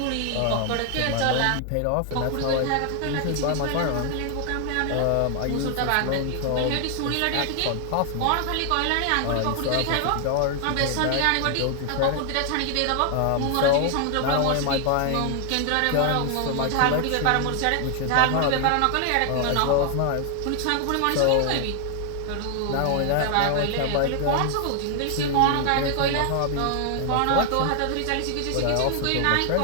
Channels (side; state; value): both; different; correlation 0.00